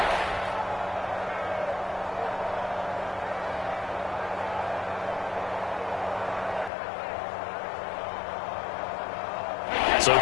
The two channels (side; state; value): right; drops out; at 6.7 s